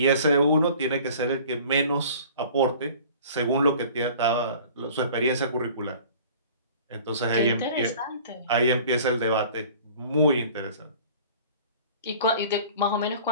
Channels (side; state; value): both; inverted; correlation -0.46